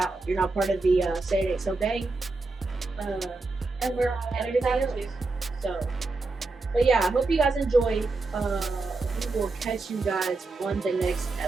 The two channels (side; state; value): left; quieter; 3.5 dB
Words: You're not part of the Say It Ain't So gang. And we're on everything else. So, but yeah, I hope you guys enjoyed. We will catch you guys on the next